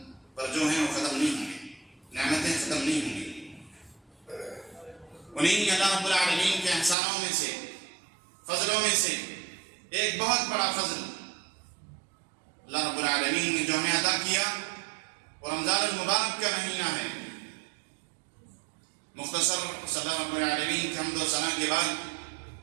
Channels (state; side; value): drops out; left; at 7.0 s